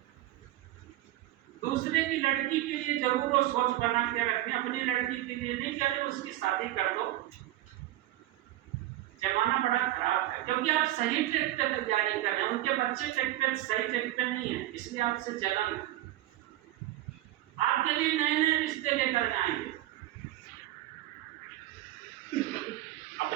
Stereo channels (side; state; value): left; quieter; 15.0 dB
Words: दूसरे की लड़की के लिए जरूर वो सोच बना के रखें, अपनी लड़की के लिए नहीं कह रहे उसकी शादी कर दो। जमाना बड़ा खराब है, क्योंकि आप सही ट्रैक पे तैयारी कर रहे हैं, उनके बच्चे ट्रैक पे सही ट्रैक पे नहीं है, इसलिए आपसे जलन है। आपके लिए नए नए रिश्ते लेकर जाएंगे,